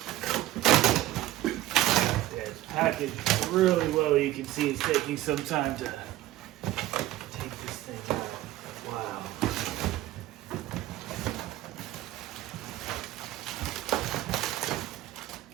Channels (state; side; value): quieter; left; 15.1 dB